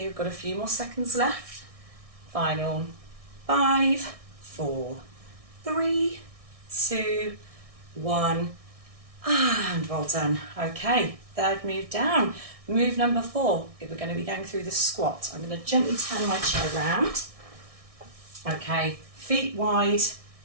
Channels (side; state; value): left; late; 1.6 ms